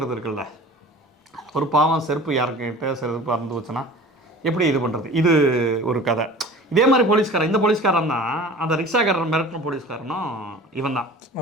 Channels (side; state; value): both; normal; correlation 0.42